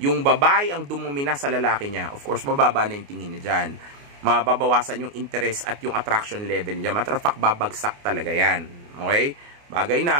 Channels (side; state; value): left; late; 29 ms